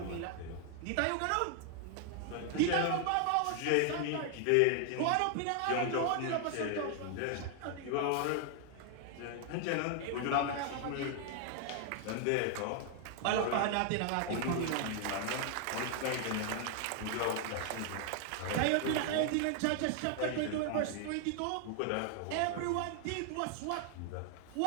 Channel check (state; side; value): different; both; correlation 0.00